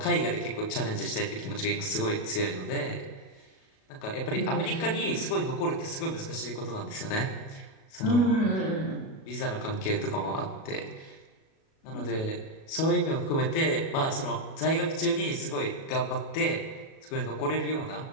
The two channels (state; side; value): late; right; 37 ms